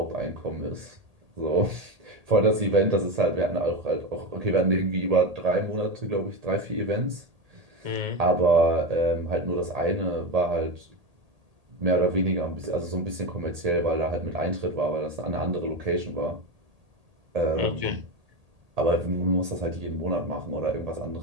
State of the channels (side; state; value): left; late; 1.8 ms